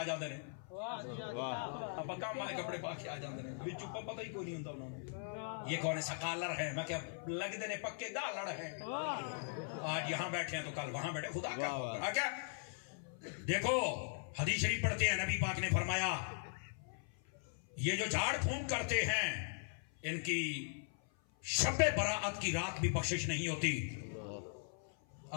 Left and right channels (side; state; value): right; silent; 51 dB below the other